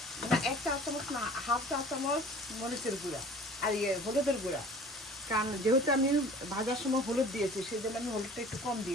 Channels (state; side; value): normal; both; correlation 0.46